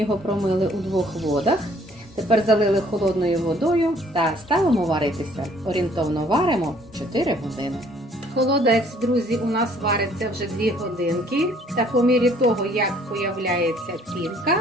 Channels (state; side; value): normal; both; correlation 0.60